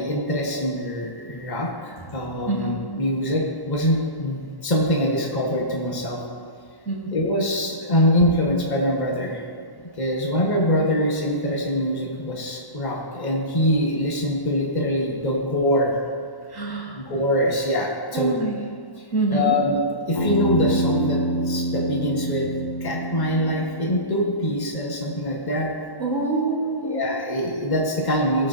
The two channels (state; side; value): late; right; 1.1 ms